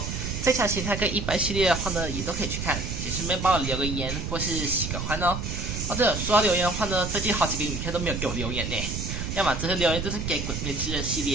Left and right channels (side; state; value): right; noise; rumble, 4 dB below the sound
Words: 这场形态跟一般系列的话呢，也都可以去看，也顺便帮我留个言或是喜个欢哦。哦对了，说到留言的话呢，最近好几个影片都没有给我留言呢，要么这些留言都是给鬼灭之刃系